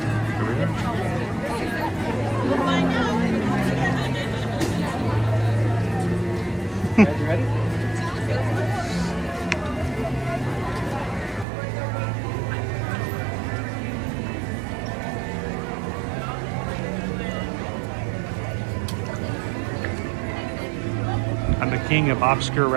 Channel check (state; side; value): drops out; left; at 11.5 s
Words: king of obscure